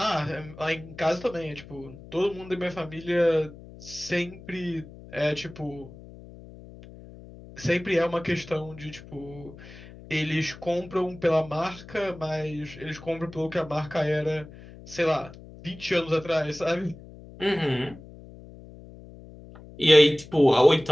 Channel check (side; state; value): left; noise; hum, 18 dB below the sound